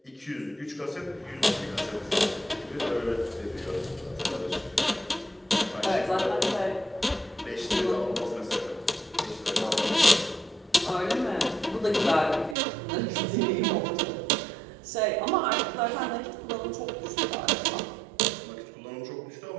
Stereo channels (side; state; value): left; drops out; at 12.6 s